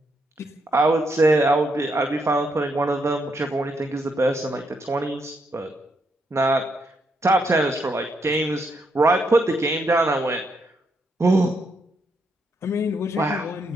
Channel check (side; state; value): both; normal; correlation 0.78